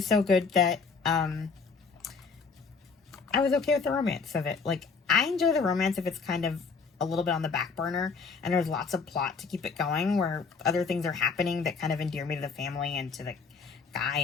so good that I was okay with the romance of it. Like, I enjoy the romance if it's kind of a little bit on the back burner and there's lots of plot to keep it going, where other things are happening that kind of endear me to the family and to the guy,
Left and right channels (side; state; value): right; quieter; 5.0 dB